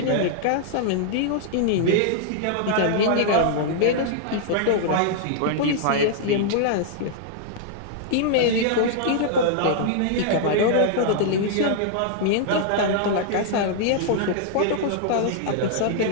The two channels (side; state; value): both; different; correlation -0.01